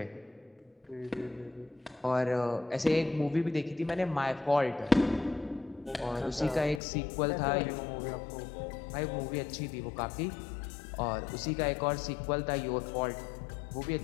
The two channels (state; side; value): drops out; right; at 6.8 s